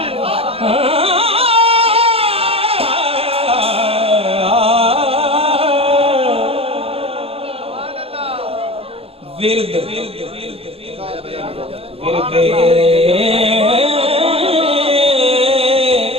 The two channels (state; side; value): late; left; 0.28 ms